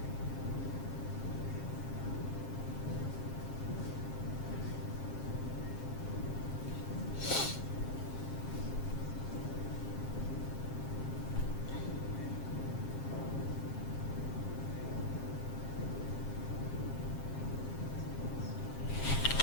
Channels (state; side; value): late; right; 7.5 ms